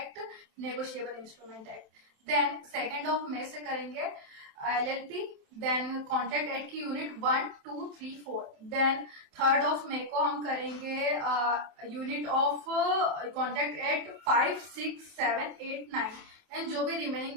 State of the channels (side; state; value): left; late; 27 ms